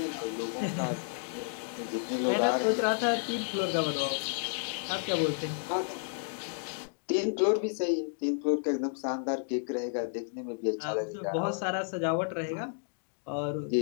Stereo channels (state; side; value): silent; right; digital silence